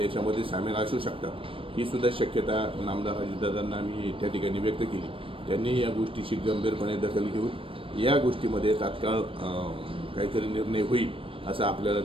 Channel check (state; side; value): late; left; 0.26 ms